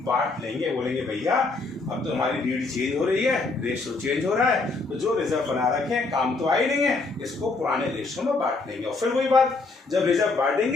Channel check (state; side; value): quieter; right; 3.7 dB